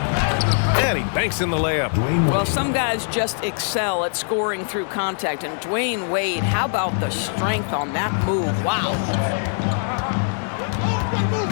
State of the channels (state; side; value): silent; right; digital silence